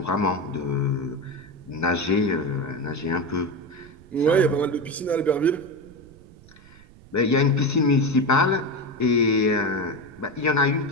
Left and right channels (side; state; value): right; noise; rumble, 23 dB below the sound